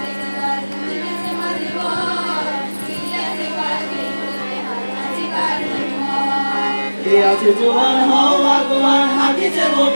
কে আছে জোয়ান হও আগুয়ান হাকিছে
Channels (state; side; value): inverted; both; correlation -1.00